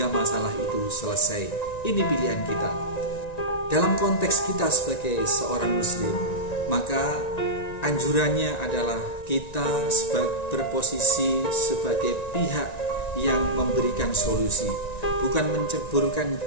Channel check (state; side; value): late; right; 1.9 ms